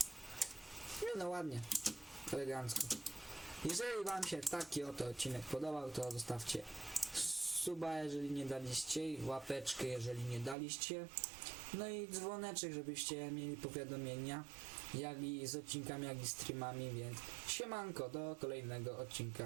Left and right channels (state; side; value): drops out; left; at 10.6 s